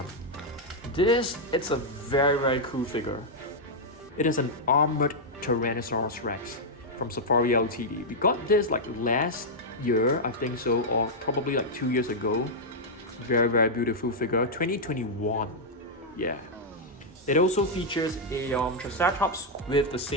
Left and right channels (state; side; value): normal; both; correlation -0.04